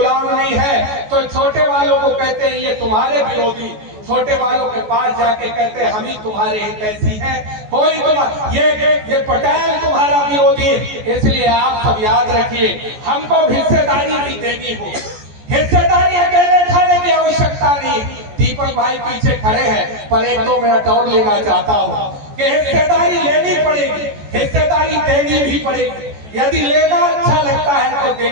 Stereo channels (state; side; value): late; left; 14 ms